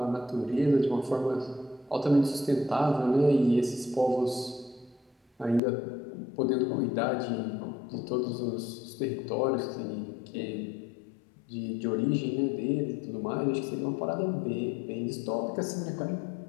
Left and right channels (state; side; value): drops out; right; at 5.6 s